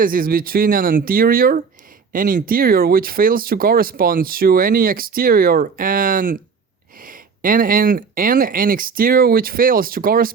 between an interior which fails to correspond to any exterior and an exterior which fails to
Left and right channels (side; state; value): left; quieter; 5.6 dB